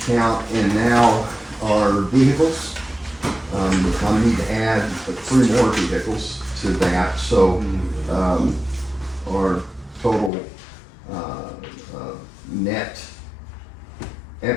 account and now our vehicles. I need to add 3 more vehicles to that, so our total net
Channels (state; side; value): drops out; right; at 10.3 s